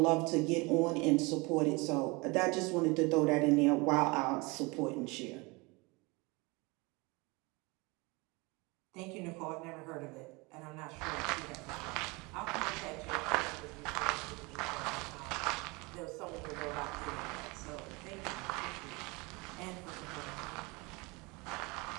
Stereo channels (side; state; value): left; quieter; 26.2 dB